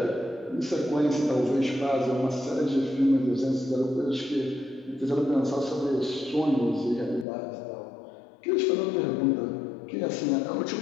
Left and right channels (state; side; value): drops out; right; at 7.2 s